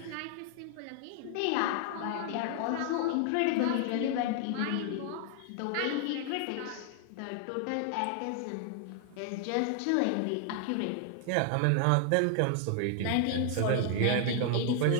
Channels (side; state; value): both; different; correlation 0.00